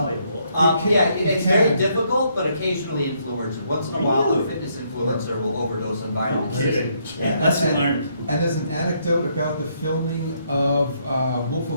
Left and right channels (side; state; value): both; inverted; correlation -0.72